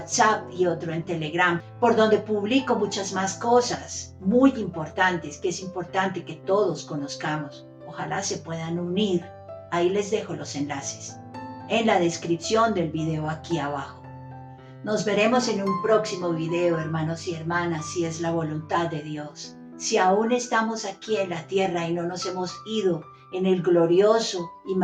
y otro en Telegram, por donde publico muchas más cosas muy importantes, que es importante que todos conozcamos. Ojalá se puedan unir. Ahí les dejo los enlaces en la descripción del video aquí abajo. Nos veremos en un próximo video, hermanos y hermanas, si es la voluntad de Dios. Si aún estamos aquí en la tierra y no nos hemos ido en el glorioso y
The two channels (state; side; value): identical; both; correlation 1.00